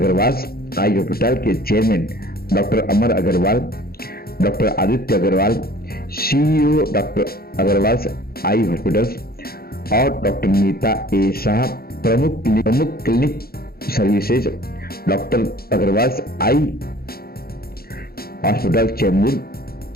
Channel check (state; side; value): late; right; 0.44 ms